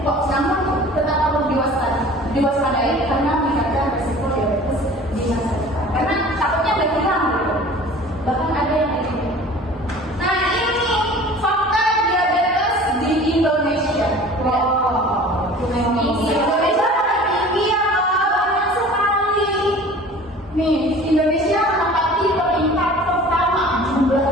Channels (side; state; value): both; normal; correlation 0.44